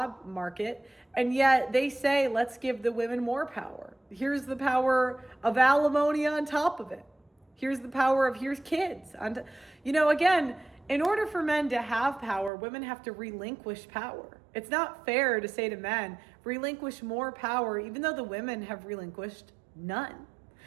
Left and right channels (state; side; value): drops out; left; at 12.5 s